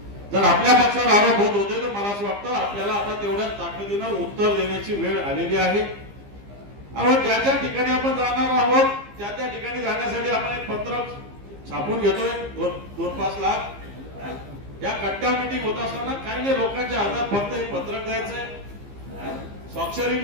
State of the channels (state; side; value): late; left; 15 ms